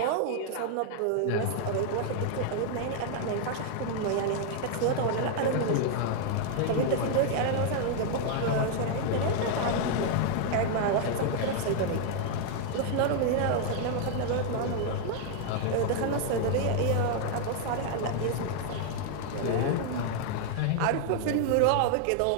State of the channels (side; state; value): both; different; correlation 0.00